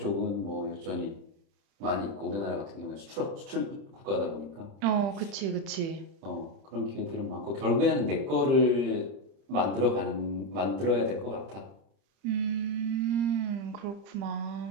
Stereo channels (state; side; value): late; left; 30 ms